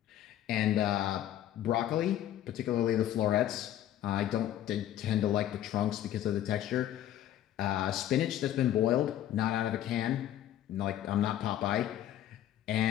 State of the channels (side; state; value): right; quieter; 12.0 dB